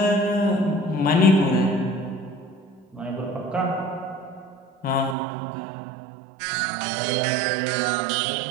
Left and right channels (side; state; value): left; drops out; at 5.2 s